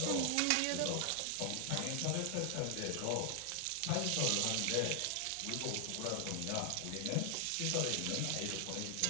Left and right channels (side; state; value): both; different; correlation 0.00